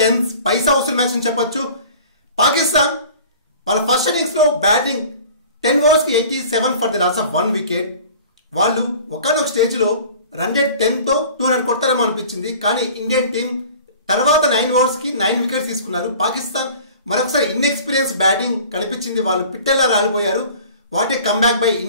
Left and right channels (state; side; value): inverted; both; correlation -0.45